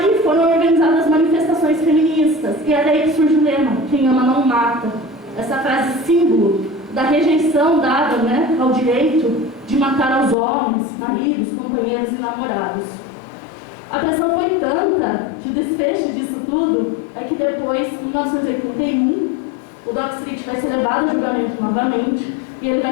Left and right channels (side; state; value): right; drops out; at 10.4 s